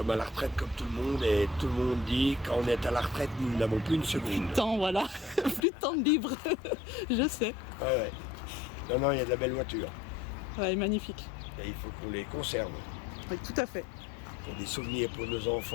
à la retraite comme tout le monde et tout le monde dit quand on est à la retraite, nous n'avons plus une seconde. Plus de temps, voilà. Plus de temps de libre. Je sais. Ouais. Non, il y a de la belle voiture. Ouais, magnifique. Et il faut qu'on les conserve. Oui, tout à fait. Pour des souvenirs pour nos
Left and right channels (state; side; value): drops out; right; at 5.7 s